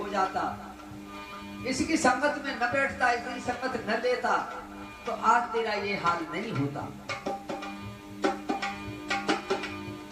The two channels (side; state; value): both; identical; correlation 1.00